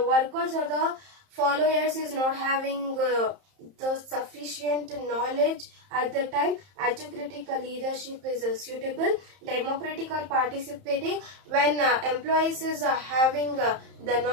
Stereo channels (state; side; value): late; left; 30 ms